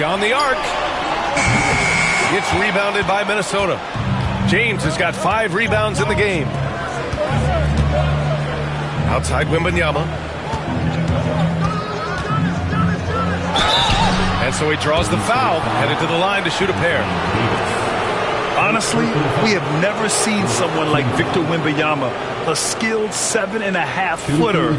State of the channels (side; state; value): both; identical; correlation 1.00